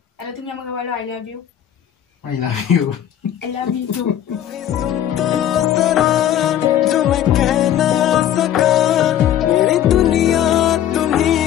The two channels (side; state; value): right; quieter; 10.8 dB